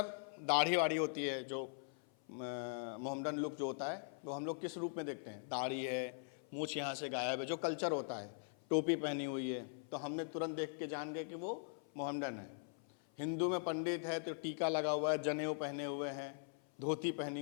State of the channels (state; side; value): silent; right; 50 dB below the other